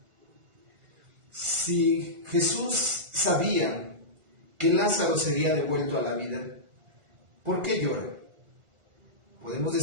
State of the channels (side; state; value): left; late; 1.4 ms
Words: Si Jesús sabía que Lázaro sería devuelto a la vida, ¿por qué llora? Podemos